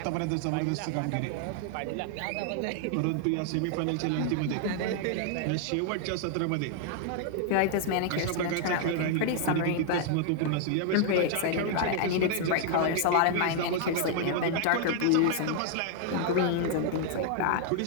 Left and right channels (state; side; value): different; both; correlation 0.00